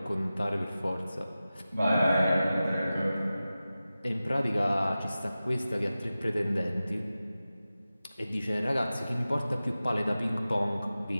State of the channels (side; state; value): both; inverted; correlation -0.95